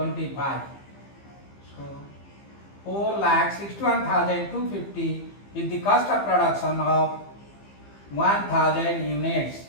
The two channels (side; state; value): right; late; 15 ms